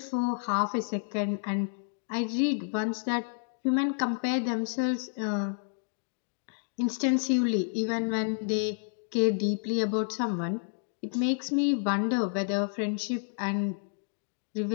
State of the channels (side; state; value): right; silent; digital silence